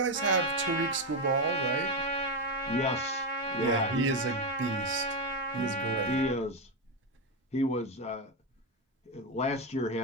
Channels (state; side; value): normal; both; correlation 0.09